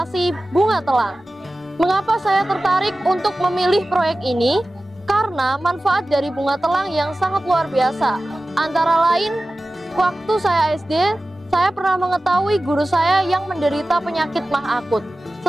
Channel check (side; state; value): both; normal; correlation 0.96